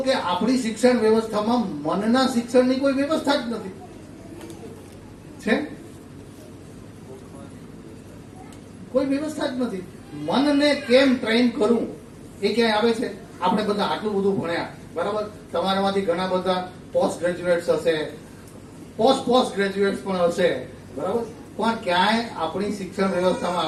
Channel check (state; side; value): identical; both; correlation 1.00